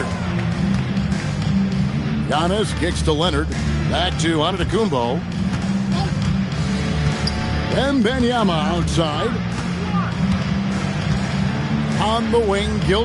Giannis kicks to Leonard. Back to Antetokounmpo. Wembanyama outside. On the wing,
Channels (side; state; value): both; identical; correlation 1.00